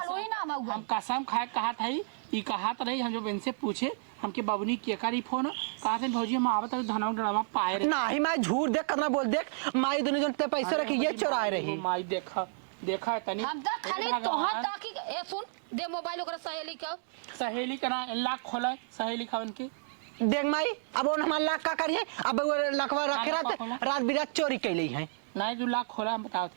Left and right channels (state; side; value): silent; left; digital silence